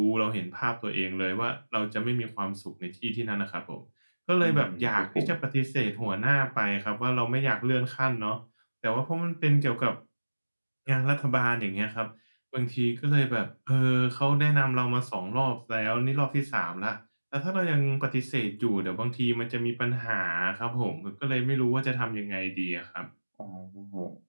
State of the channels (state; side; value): inverted; both; correlation -1.00